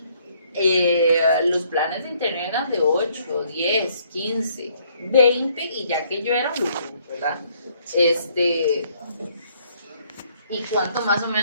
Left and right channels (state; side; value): inverted; both; correlation -0.65